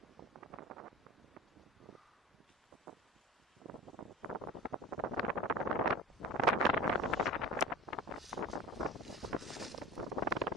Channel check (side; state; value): both; normal; correlation 0.35